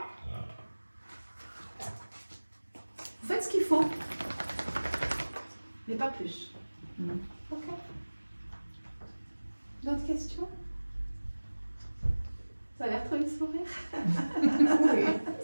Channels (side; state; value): both; inverted; correlation -1.00